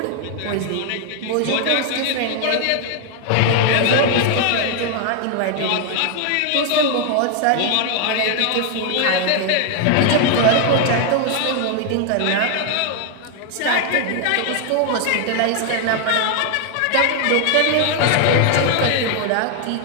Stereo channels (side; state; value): both; different; correlation 0.00